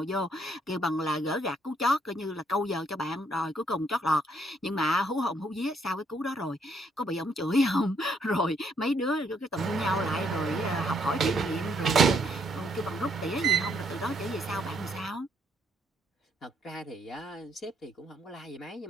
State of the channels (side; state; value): both; normal; correlation 0.70